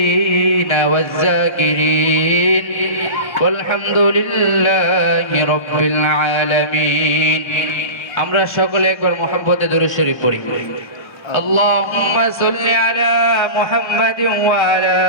والذاكرين والحمد لله رب العالمين আমরা সকলে একবার মহব্বতে দরুদ শরীফ পড়ি اللهم صل على محمد وعلى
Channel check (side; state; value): right; late; 1.2 ms